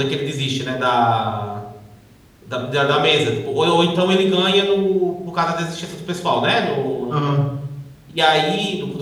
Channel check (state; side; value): identical; both; correlation 1.00